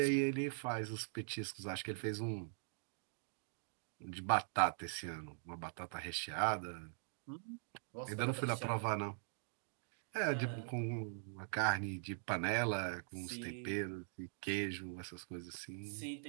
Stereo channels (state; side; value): silent; left; digital silence